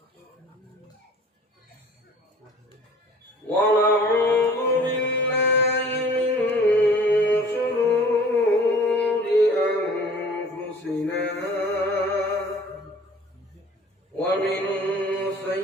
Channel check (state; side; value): normal; both; correlation 0.49